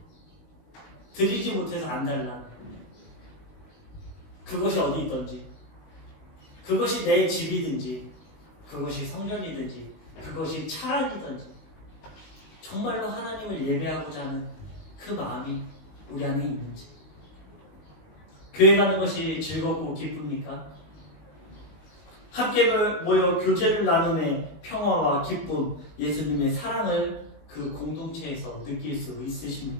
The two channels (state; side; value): late; right; 20 ms